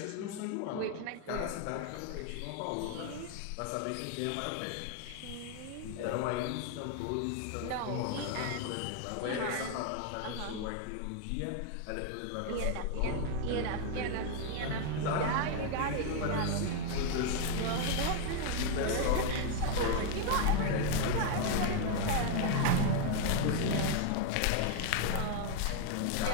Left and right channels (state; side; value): different; both; correlation 0.01